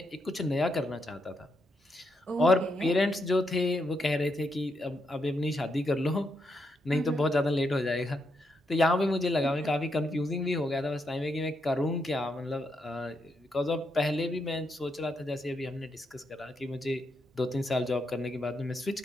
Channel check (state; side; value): normal; both; correlation 0.80